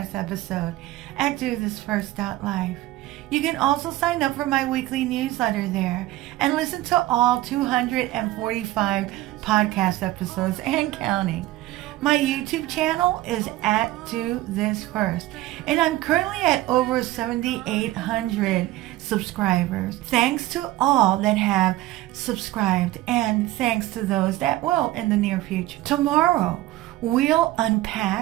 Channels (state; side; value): quieter; left; 16.6 dB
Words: episode at DoThisFirst.life. You can also sign up for my weekly newsletter there and listen to all 245 podcast episodes and counting. My YouTube channel is at Do This First, and I'm currently at over 7,800 subscribers. Thanks to all that have subscribed, and thanks to those that will in the near future. Tomorrow, we'll